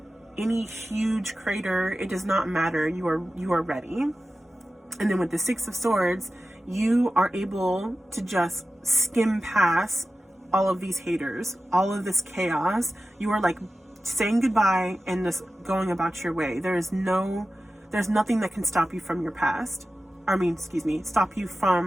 any huge crater, it does not matter. You are ready. And then with the 6 of Swords, you are able to just skim past all of these haters, all of this chaos. You are like saying goodbye and just going about your way. There's nothing that can stop you from your past. Stop you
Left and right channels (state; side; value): normal; both; correlation 0.94